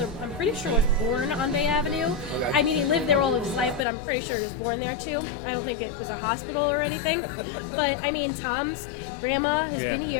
I'm pretty sure, was born on Bay Avenue. Okay. I mean, he lived there all of his life, but I'm pretty sure he was born there too. I don't think it was a hospital or anything. But I mean, Tom's grandma has been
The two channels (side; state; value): right; drops out; at 3.9 s